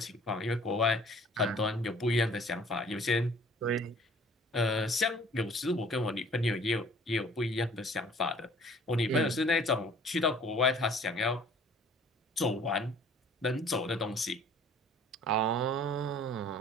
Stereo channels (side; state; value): both; normal; correlation 0.52